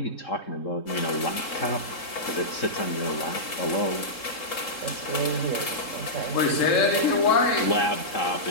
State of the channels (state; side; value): late; right; 3.7 ms